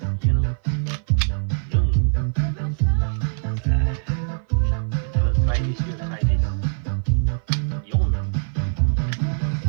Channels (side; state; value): left; silent; 56 dB below the other